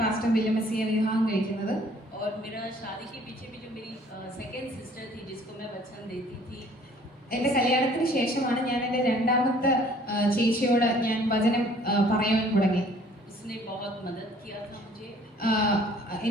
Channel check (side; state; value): both; normal; correlation 0.56